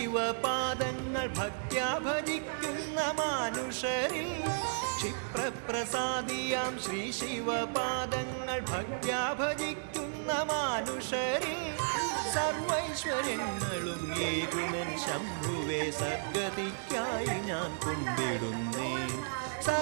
ഭക്ത്യാ ഭജിക്കുന്ന മാനുഷരിൽ ക്ഷിപ്രപ്രസാദിയാം ശ്രീ ശിവപാദങ്ങൾ ഭക്ത്യാ ഭജിക്കുന്ന മാനുഷരിൽ സർവൈശ്വര്യങ്ങളും ഏകുമൻ ശംഭുവേ സദ്ഗതിക്കായി ഞാൻ കുമ്പിടുന്നേ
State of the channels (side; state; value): left; silent; digital silence